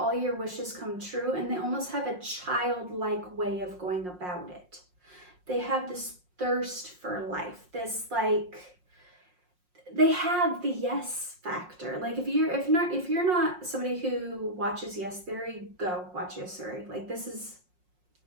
your wishes come true, and they almost have a childlike way of going about it. They have this thirst for life, this like, they have the yes factor. Like, if you're not somebody who watches Yes Theory, go watch Yes Theory. Like, this is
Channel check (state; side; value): late; left; 5.6 ms